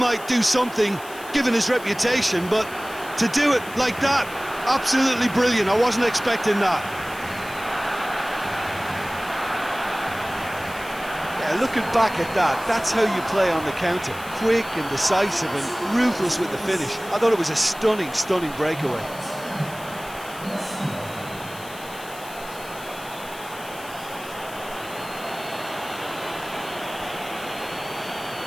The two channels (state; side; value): noise; left; hiss, 17 dB below the sound